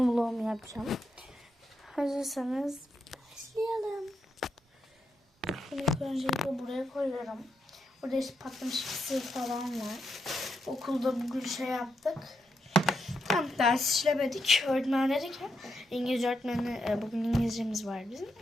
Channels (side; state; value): both; normal; correlation 0.82